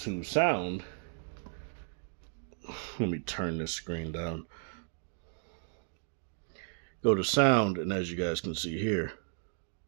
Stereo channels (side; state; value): left; silent; digital silence